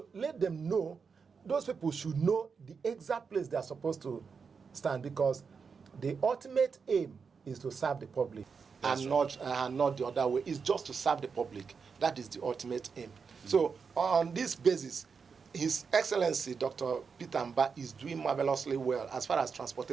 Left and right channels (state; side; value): quieter; left; 5.6 dB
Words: let them know, those people should know the exact place they are supposed to stand, because the ultimate aim is to serve the public. That's and not the other way. It's just to serve the public. That is the ultimate aim. So on this basis, His Excellency Dr. Peter Mbah is doing marvelously well as far as